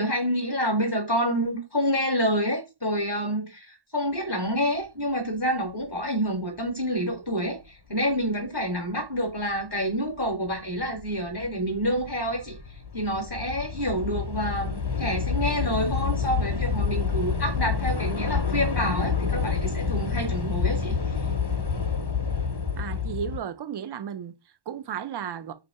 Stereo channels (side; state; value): left; late; 1.1 ms